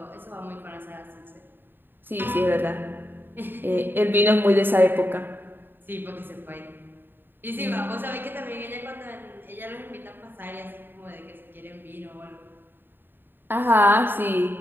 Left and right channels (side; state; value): left; late; 0.096 ms